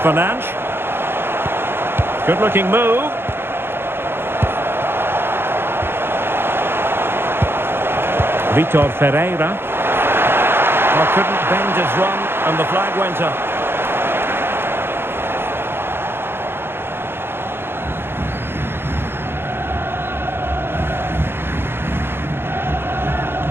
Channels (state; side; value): late; left; 0.11 ms